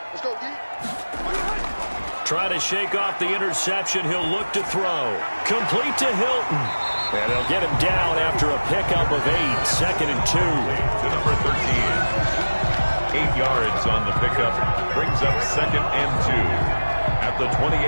Let's go, D. Trying to shake off the interception. He'll look to throw. Complete to Hilton. And they'll get him down after a pickup of 8. 2nd and 2. to number 13. 8 yards on the pickup. Brings up 2nd and 2 at the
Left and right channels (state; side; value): inverted; both; correlation -1.00